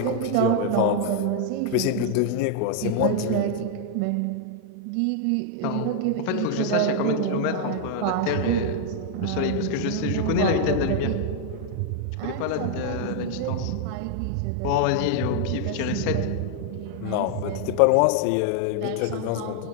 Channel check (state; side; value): different; both; correlation 0.00